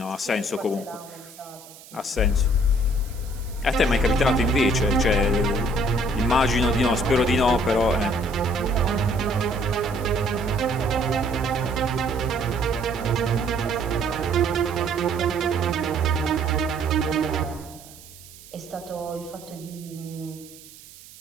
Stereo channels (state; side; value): noise; right; hiss, 20 dB below the sound